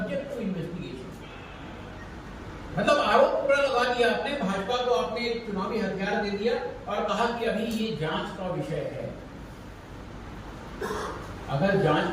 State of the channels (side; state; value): both; identical; correlation 1.00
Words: टू इन्वेस्टिगेशन। मतलब आरोप पूरा लगा दिया आपने, भाजपा को आपने एक चुनावी हथियार दे दिया और कहा कि अभी ये जांच का विषय है। अगर जांच